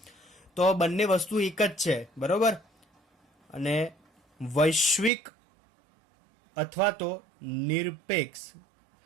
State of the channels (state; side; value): drops out; left; at 5.1 s